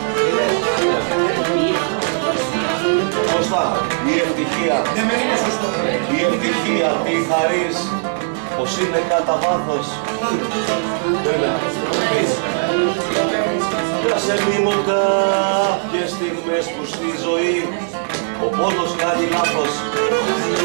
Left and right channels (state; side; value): silent; left; 67 dB below the other